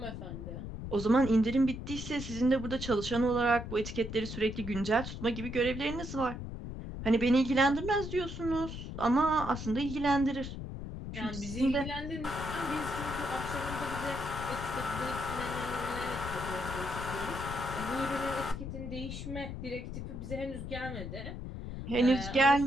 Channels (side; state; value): left; noise; rumble, 7 dB below the sound